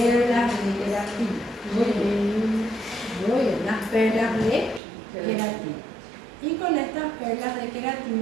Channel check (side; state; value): left; drops out; at 4.8 s